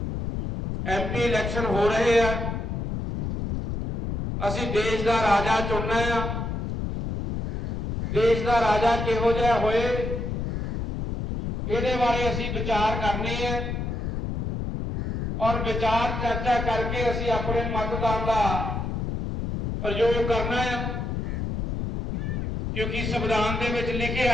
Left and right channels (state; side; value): noise; left; rumble, 3 dB below the sound